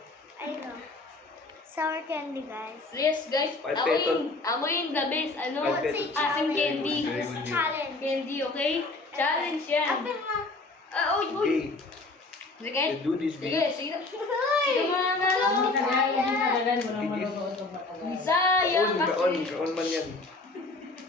Ayun o. Sour candy guys. Yes guys, Ay, amoyin the best. Ano? Ay, Say Aking challenge. candy. Very good. Challenge. Candy, okay? Challenge yan. Open mo. Uy, uy. Okay, Sige. you do this, Sige, babe. sige. Sige mga nalo. Hindi talaga, walang maluto itong matagal. Sayang Kaon kasi. man yan.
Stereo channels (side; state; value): right; quieter; 3.3 dB